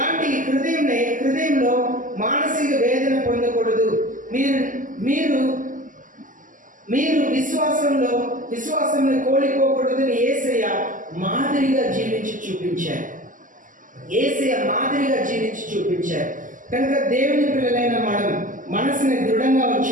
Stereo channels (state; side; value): late; left; 0.38 ms